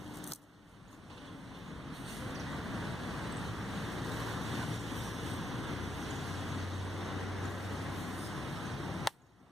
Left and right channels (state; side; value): normal; both; correlation 0.80